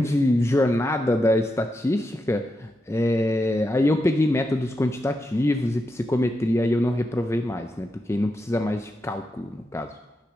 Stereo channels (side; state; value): both; normal; correlation 0.86